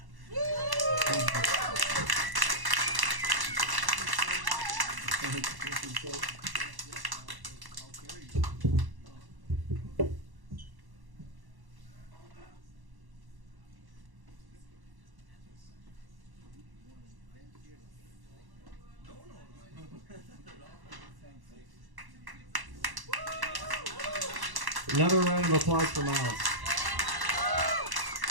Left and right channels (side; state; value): left; late; 1.1 ms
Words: Another round of applause for Miles.